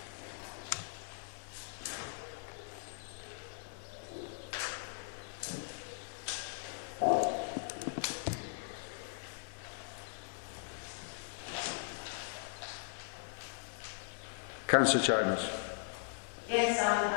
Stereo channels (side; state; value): right; silent; digital silence